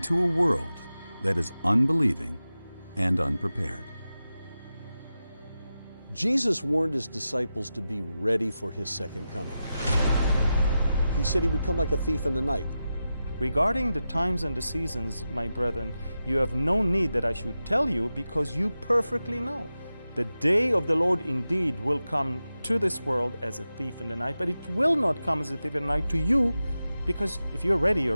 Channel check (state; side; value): inverted; both; correlation -0.92